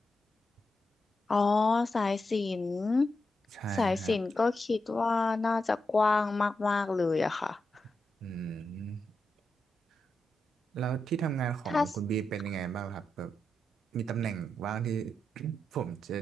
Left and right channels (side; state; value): both; normal; correlation 0.87